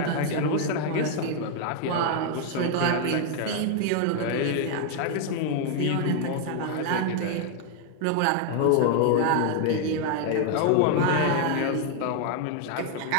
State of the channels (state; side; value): different; both; correlation 0.00